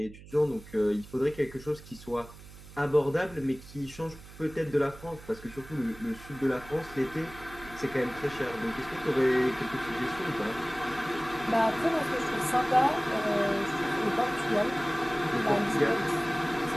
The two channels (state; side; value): noise; right; hum, 18 dB below the sound